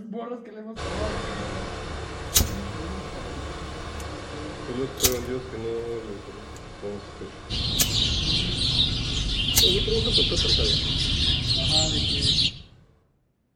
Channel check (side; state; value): both; identical; correlation 1.00